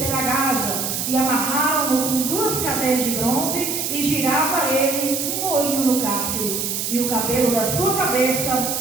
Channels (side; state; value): right; noise; hiss, 2 dB below the sound